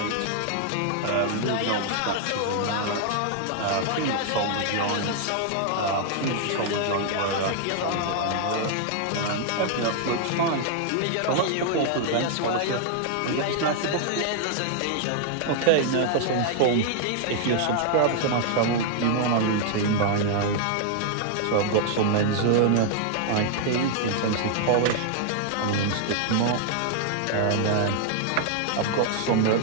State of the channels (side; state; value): both; different; correlation 0.00